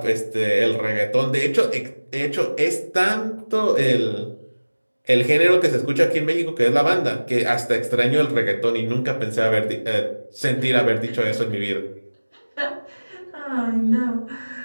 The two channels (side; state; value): both; inverted; correlation -1.00